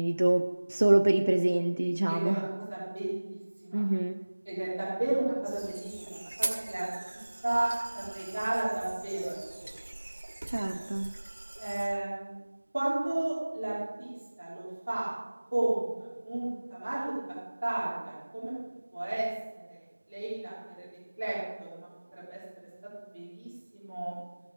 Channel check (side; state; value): both; inverted; correlation -1.00